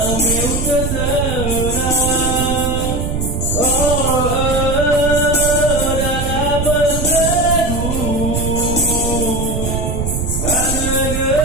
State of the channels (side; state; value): right; noise; rumble, 2 dB below the sound